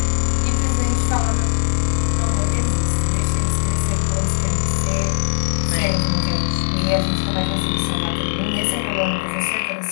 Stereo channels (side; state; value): right; silent; 66 dB below the other